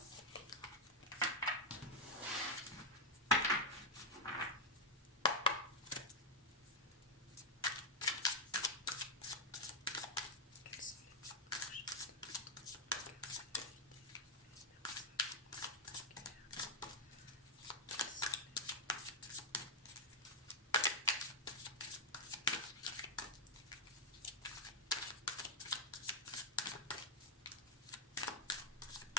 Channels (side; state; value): both; normal; correlation -0.02